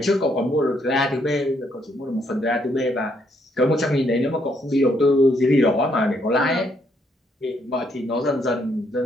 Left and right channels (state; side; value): normal; both; correlation 0.73